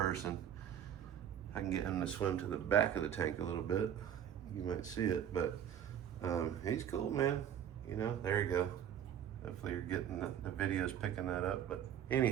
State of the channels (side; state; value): left; quieter; 9.7 dB